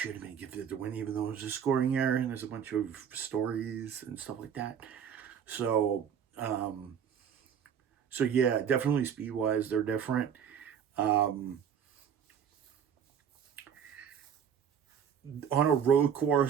have been gifted the win, even though it was a scoring error, and there's a bunch of stories and stuff like that. So yeah, definitely speed-wise, they're different. On a road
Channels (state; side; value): quieter; left; 8.0 dB